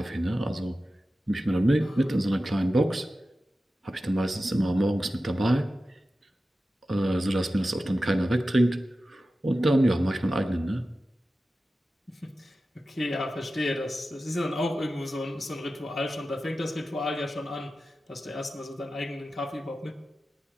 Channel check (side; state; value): both; normal; correlation 0.94